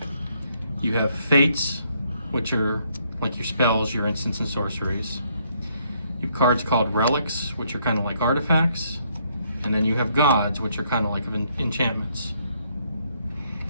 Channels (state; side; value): inverted; both; correlation -0.70